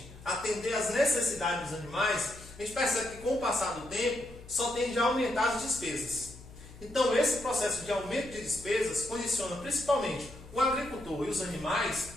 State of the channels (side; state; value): left; noise; hum, 18 dB below the sound